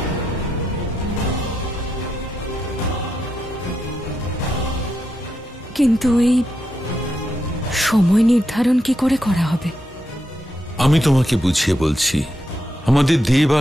কিন্তু এই সময় নির্ধারণ কি করে করা হবে? আমি তোমাকে বুঝিয়ে বলছি। আমাদের দেব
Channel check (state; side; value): normal; both; correlation 0.83